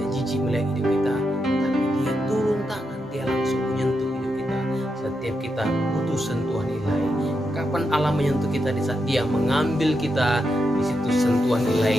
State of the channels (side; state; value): both; normal; correlation 0.84